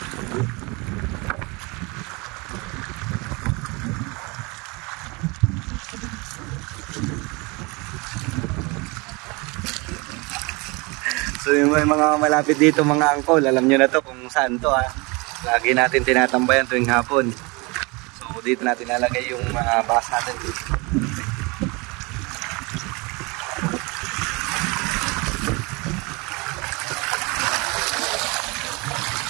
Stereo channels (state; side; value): quieter; left; 27.3 dB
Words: So yung mga malapit dito mga angkol, alam nyo na to kung saan to ha. Lagi natin tinatambayan tuwing hapon. So dito natin nalagay yung mga bahas natin.